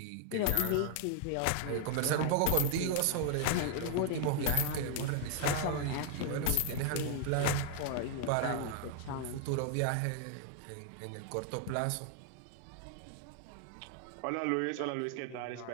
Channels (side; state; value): both; different; correlation 0.00